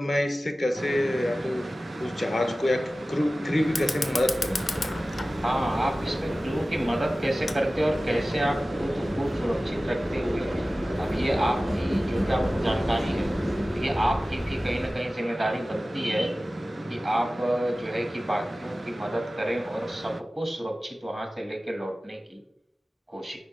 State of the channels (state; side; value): normal; both; correlation 0.96